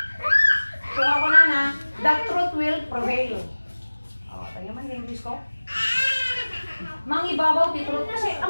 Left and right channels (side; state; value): both; inverted; correlation -1.00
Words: So ako na, the truth will prevail. Tayo man yung English ko. Mangibabaw ti truth, kasi